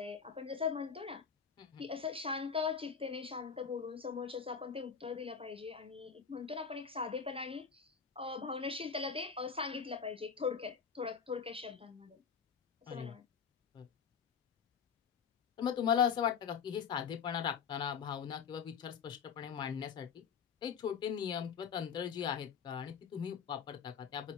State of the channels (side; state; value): right; quieter; 6.6 dB